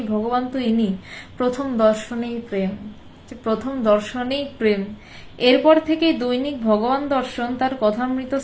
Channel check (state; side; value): identical; both; correlation 1.00